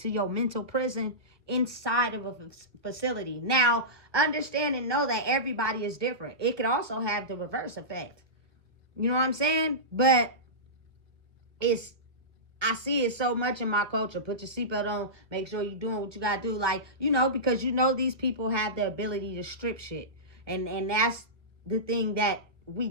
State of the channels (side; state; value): left; late; 1.2 ms